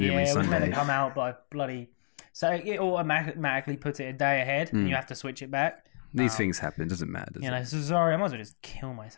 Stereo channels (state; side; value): silent; right; digital silence